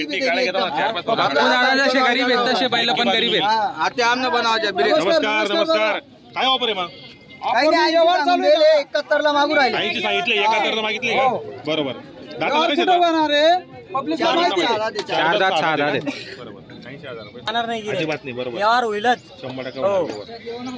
गरीब आहेत तसे बैल पण गरीब आहेत. आता आमने बनवायच्या. नमस्कार. काय ऑफर आहे मग? काही नाही, व्यवहार चालू आहे. 71 ला मागू राहिले. 80 सांगितले, 71 मागितले. बरोबर. कुठं बनणार आहे? पब्लिक 4 दात 6 दात. बरोबर. जाणार नाही गिऱ्हाईक. अजिबात नाही, बरोबर. व्यवहार होईलच. 100% हो. बरोबर.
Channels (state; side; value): identical; both; correlation 1.00